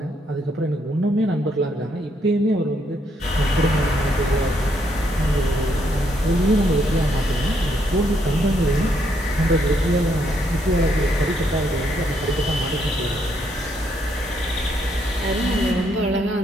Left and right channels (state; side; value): normal; both; correlation 0.74